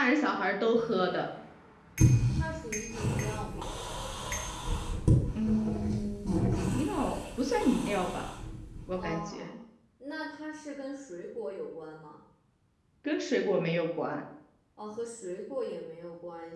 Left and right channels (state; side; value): identical; both; correlation 1.00